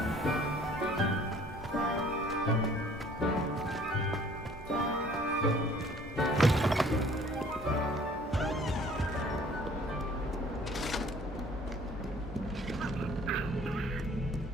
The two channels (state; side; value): normal; both; correlation 0.54